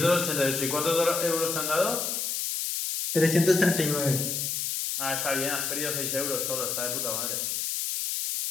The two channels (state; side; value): noise; left; hiss, 1 dB below the sound